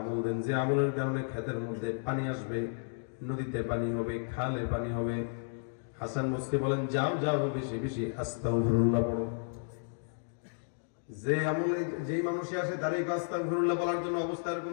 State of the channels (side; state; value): right; silent; digital silence